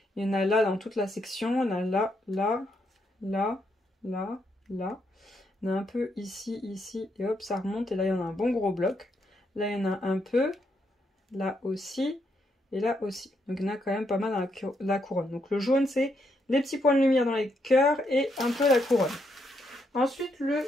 Il y en a là dans toute la section. Il y en a là, là, là, là, là. Il y en a un peu ici, ici. Et hop, ça remonte. Et là, il y en a un bon gros bloc. Là, il y en a un peu. Là aussi. Et là aussi. Donc, il y en a quand même pas mal dans la couronne. Donc, le jaune, c'est les petits points de lumière dans les cœurs et un peu la couronne. Ensuite, le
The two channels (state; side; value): normal; both; correlation 0.77